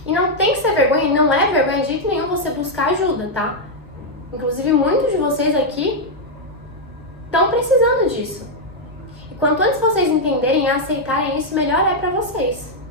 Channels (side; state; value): both; normal; correlation -0.01